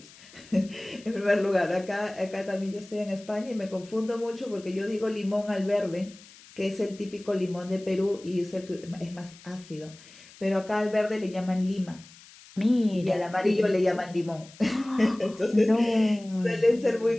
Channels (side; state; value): left; noise; hiss, 22 dB below the sound